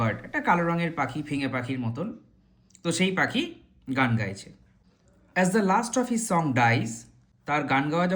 একটা কালো রঙের পাখি, ফিঙে পাখির মতন, তো সেই পাখি গান গাইছে। As the last of his song dies, তার গান গাওয়া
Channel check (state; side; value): identical; both; correlation 1.00